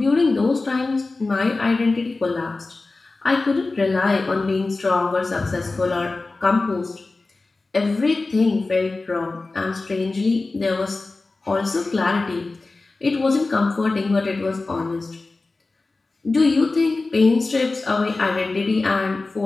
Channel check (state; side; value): quieter; right; 3.5 dB